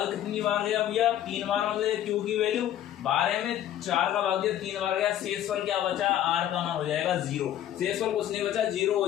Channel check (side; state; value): right; quieter; 11.6 dB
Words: कितनी बार गया भैया 3 बार, मतलब क्यू की वैल्यू 12 में 4 का भाग दिया 3 बार गया, शेषफल क्या बचा r का मान हो जाएगा 0, शेषफल कुछ नहीं बचा 0 हो